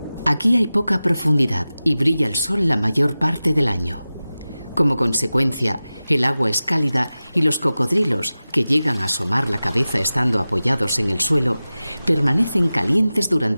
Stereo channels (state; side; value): inverted; both; correlation -0.96